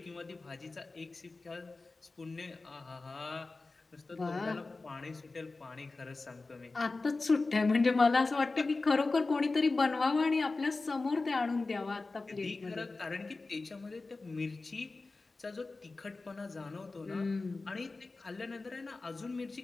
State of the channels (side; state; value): right; quieter; 3.6 dB